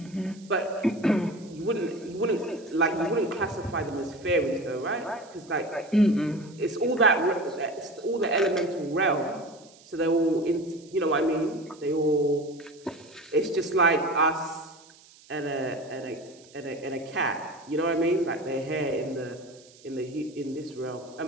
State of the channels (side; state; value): right; noise; hiss, 25 dB below the sound